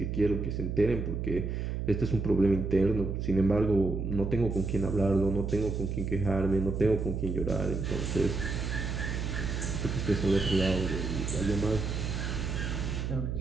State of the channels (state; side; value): noise; right; hum, 2 dB below the sound